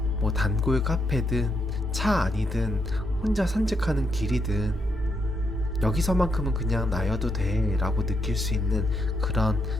단골 카페든 차 안이든 혼자 산책하는 길이든 여기서만큼은 그냥 나여도 돼 라고 느낄 수 있는 그런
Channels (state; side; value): normal; both; correlation 0.80